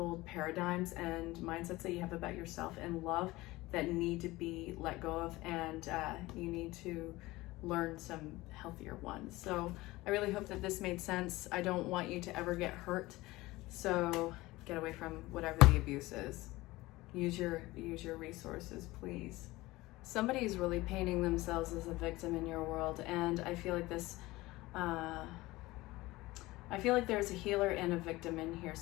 paradigms and mindsets that you have about yourself and love that need to be let go of, and you need to learn some healthier ones. So I really hope that this made sense. I don't want you to ever get hurt, so get away from whatever the abuse is. Use your resources, please. Somebody's really painting themselves as a victim in your world, and I feel like this I feel like there's a healer and a victim in here.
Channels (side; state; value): right; quieter; 19.6 dB